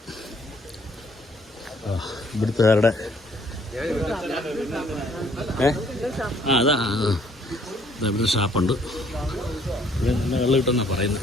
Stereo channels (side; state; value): both; normal; correlation 0.63